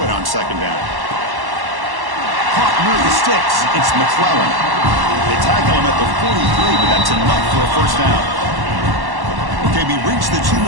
on 2nd down. Caught near the sticks. It's McClellan. They tackle him at the 43, but that's enough for a first down. Okay, we reached the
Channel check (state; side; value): late; left; 1.1 ms